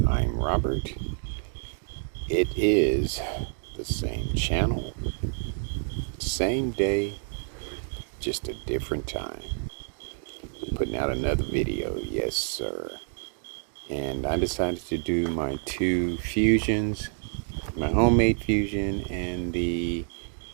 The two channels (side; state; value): left; silent; 59 dB below the other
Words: I'm Robert. It is the same channel, same day, just a different time. Putting out another video, yes sir. And I decided to do my two fusions, my homemade fusion and the